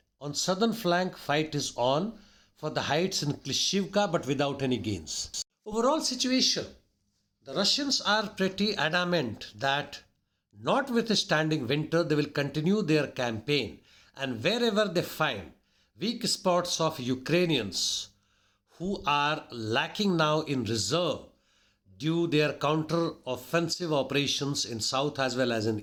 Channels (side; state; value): both; identical; correlation 1.00